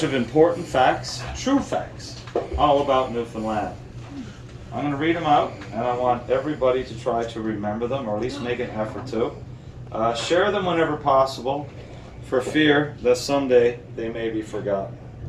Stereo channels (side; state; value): both; identical; correlation 1.00